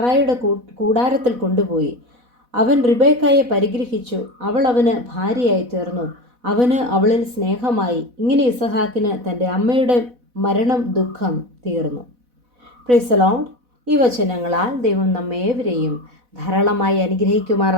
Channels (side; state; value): left; late; 4.1 ms